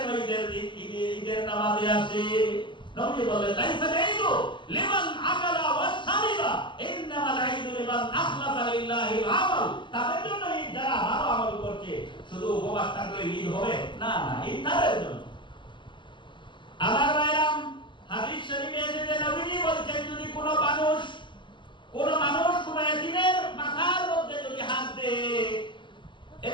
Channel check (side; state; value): right; late; 0.23 ms